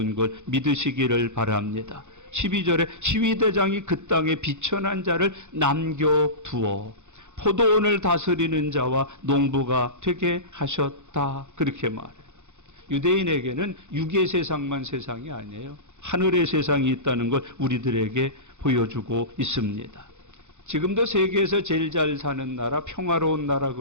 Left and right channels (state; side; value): late; left; 0.84 ms